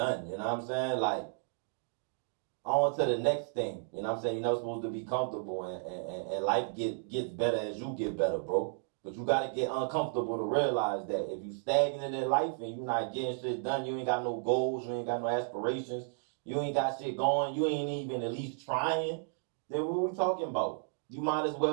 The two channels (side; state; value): left; silent; digital silence